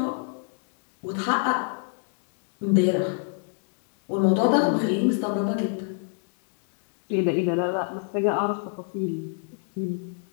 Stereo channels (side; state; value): right; silent; 60 dB below the other